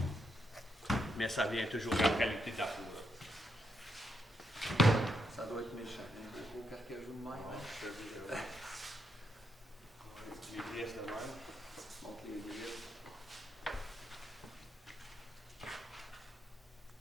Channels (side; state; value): both; normal; correlation 0.79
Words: Mais ça vient toujours de la qualité de la peau. Ça doit être méchant. Un gros carcajou de même. Hein? Les griffes de même. Montre les griffes.